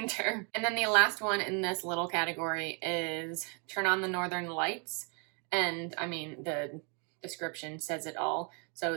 And then the last one in this little category is Turn on the Northern Lights. And I mean, the description says it all. So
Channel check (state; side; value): quieter; left; 35.9 dB